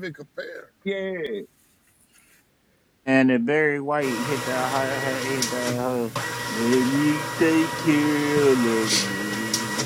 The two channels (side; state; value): both; identical; correlation 1.00